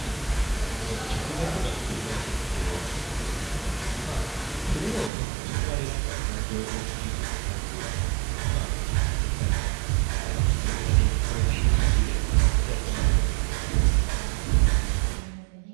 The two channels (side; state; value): left; drops out; at 5.1 s